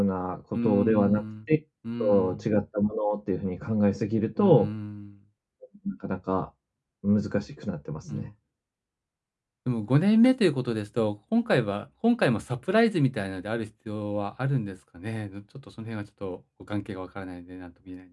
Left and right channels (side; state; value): both; identical; correlation 1.00